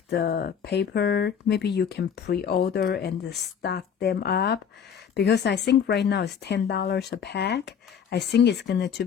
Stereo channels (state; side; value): quieter; right; 7.6 dB